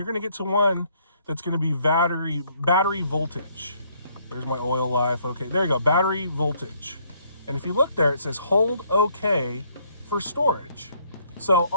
gonna get to one that's gonna be battery voltage. There's my oil life, okay, there you go, battery voltage. And if you look there, it says hold OK for storage. So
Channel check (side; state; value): both; inverted; correlation -0.66